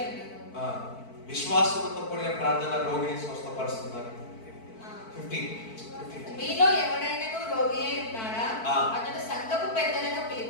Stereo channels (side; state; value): right; late; 4.5 ms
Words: ఉండును. విశ్వాసంతో కూడిన ప్రార్థన రోగిని స్వస్థపరుస్తున్నారు. 15. మీలో ఎవడైనా రోగి అయి ఉన్నాడా? అతడు సంఘపు పెద్దలను